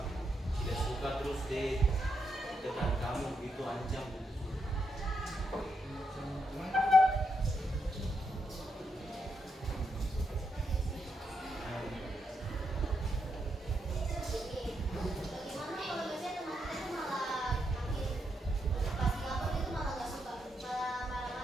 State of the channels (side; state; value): both; normal; correlation 0.81